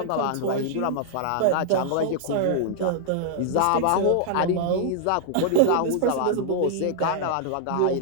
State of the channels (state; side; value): different; both; correlation -0.01